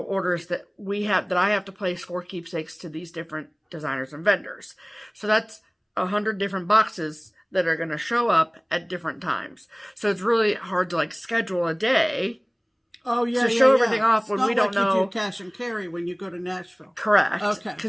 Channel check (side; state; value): both; identical; correlation 1.00